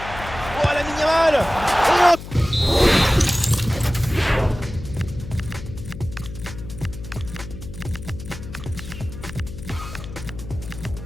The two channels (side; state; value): left; noise; hum, 12 dB below the sound